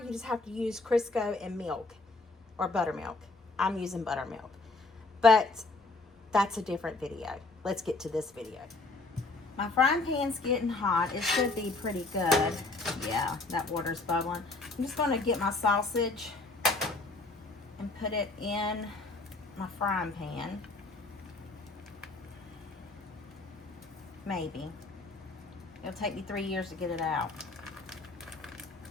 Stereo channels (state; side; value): quieter; right; 3.4 dB